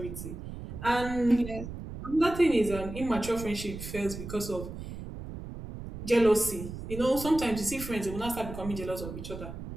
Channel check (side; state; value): right; noise; rumble, 10 dB below the sound